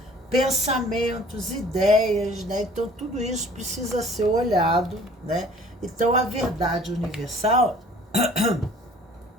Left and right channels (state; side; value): normal; both; correlation 0.51